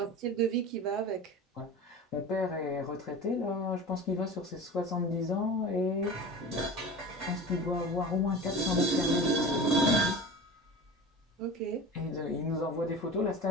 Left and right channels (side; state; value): both; normal; correlation 0.33